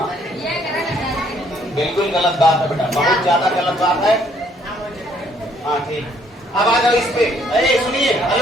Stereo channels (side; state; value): both; normal; correlation 0.65